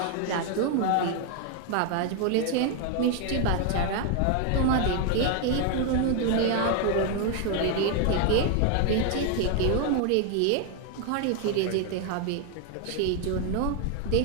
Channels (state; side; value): different; both; correlation 0.01